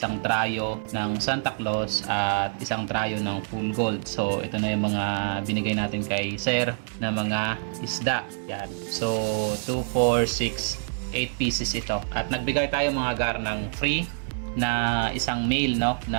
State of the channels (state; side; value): silent; left; 61 dB below the other